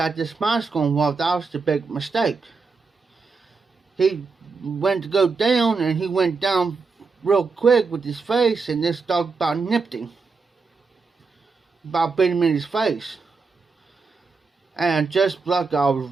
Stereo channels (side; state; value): left; quieter; 4.5 dB